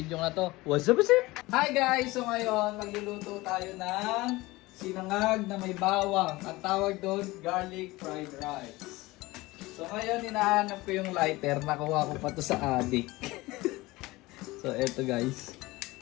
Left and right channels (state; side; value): quieter; right; 20.5 dB